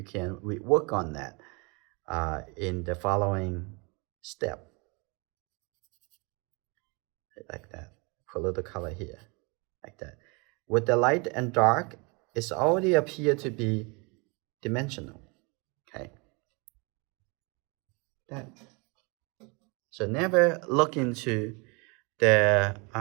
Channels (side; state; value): left; quieter; 30.3 dB